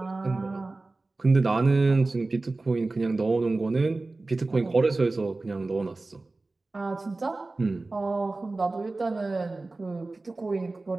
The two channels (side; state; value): left; quieter; 3.3 dB